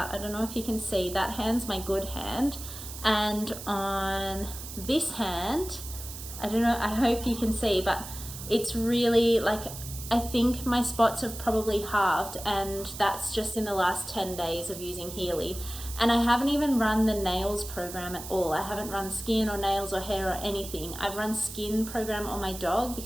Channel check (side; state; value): right; noise; hiss, 11 dB below the sound